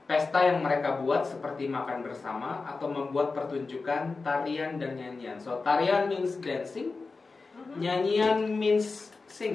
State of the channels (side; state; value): right; quieter; 4.1 dB